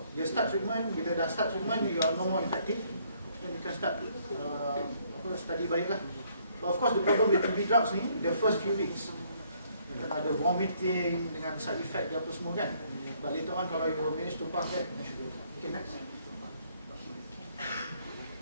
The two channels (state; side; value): inverted; both; correlation -0.66